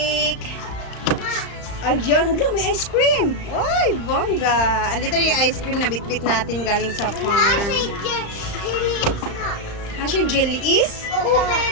Ayan, hala, may ice cream. Uy, Vongga. Andito yung ice cream na bitbit natin galing sa farm. Siya jelly is? Oo,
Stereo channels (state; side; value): late; right; 35 ms